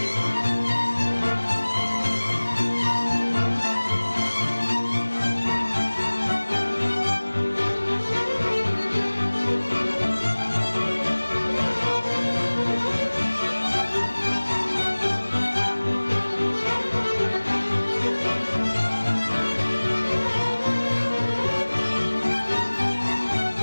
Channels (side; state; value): both; inverted; correlation -1.00